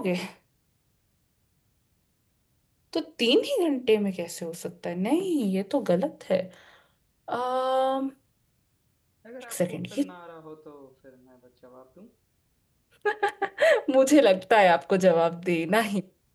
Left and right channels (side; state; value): both; identical; correlation 1.00